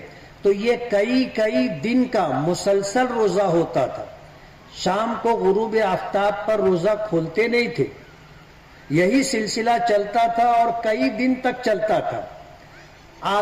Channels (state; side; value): identical; both; correlation 1.00